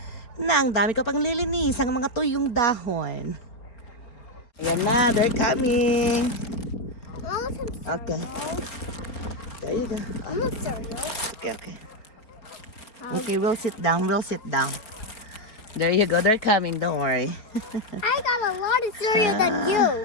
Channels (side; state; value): right; late; 4.4 ms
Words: Na, ang dami ko pang lilinis ang mga tuyong dahon. Yan na, they're coming. I want some cereal. Okay. There you go. I want cereal. Okay. Okay, we'll sit down. There you go, they're coming, don't worry. I got a lot of cereal than